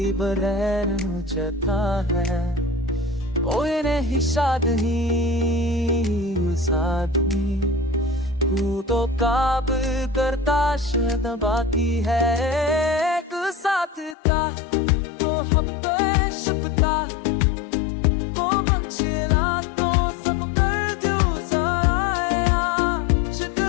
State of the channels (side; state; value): right; drops out; at 14.2 s